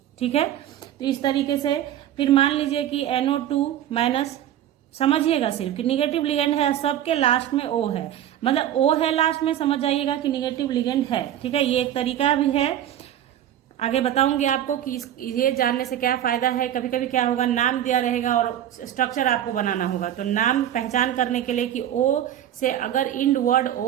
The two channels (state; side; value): quieter; left; 11.3 dB